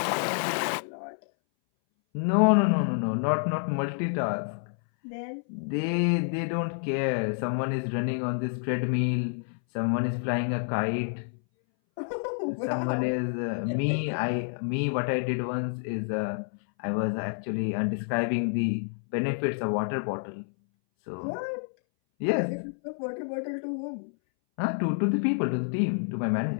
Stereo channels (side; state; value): right; silent; 59 dB below the other